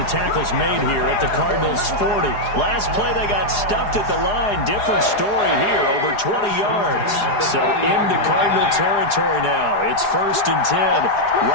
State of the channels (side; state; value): right; late; 4.8 ms